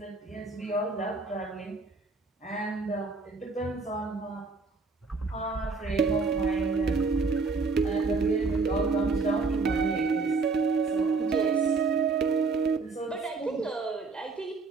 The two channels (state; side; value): quieter; left; 4.2 dB